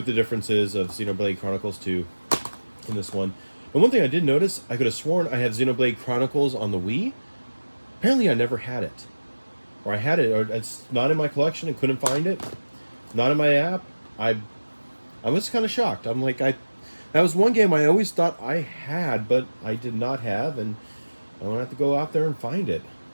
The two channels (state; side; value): inverted; both; correlation -1.00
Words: the difference is of Xenoblade Chronicles 2 and this one. And one thing I did notice, I could have sworn I had Xenoblade Chronicles on the Wii. Apparently I never had it. Or I had it, or it's not in my collection and couldn't find it. Not in my app. I was kind of shocked. I'm like, that was one game I always thought I had, but I did not have, and I'm gonna have to go out there and find it.